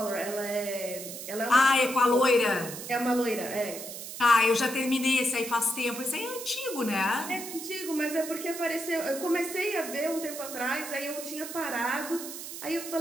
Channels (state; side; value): noise; right; hiss, 9 dB below the sound